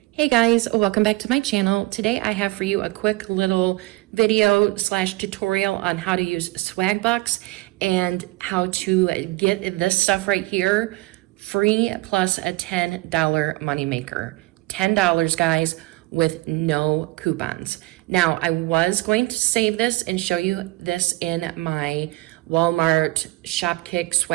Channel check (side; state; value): left; quieter; 21.0 dB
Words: Hey guys, welcome back to my channel. Today I have for you a quick little video slash tutorial on how to use Swagbucks and how to get this stuff right here free plus a $10 moneymaker. $10 guys with no coupons. Now I was going to save this and show you this in my Walmart Shopkick